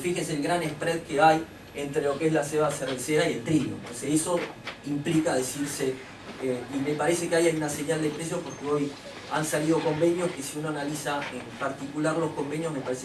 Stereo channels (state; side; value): identical; both; correlation 1.00